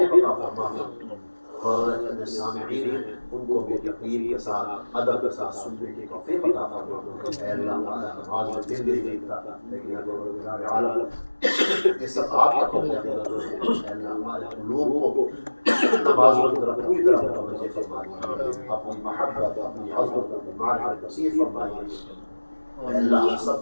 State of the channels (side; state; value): both; inverted; correlation -1.00